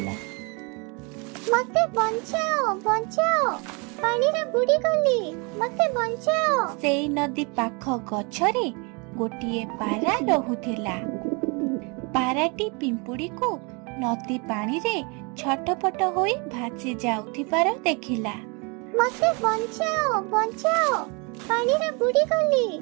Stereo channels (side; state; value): left; quieter; 31.2 dB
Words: मते बंचाओ बंचाओ पानी रे बुड़ी गली मते बंचाओ। सेई नदी पाख गछरे गोटे पारा रहुथिला। पाराटी पिंपुड़ी को नदी पानी रे छटपट होई भासी जाउथिबार देखिला। मते बंचाओ बंचाओ पानी रे बुड़ी गली